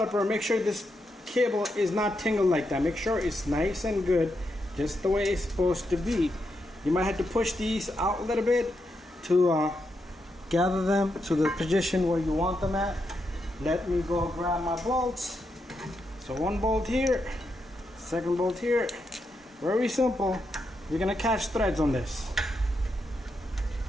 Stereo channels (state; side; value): normal; both; correlation 0.83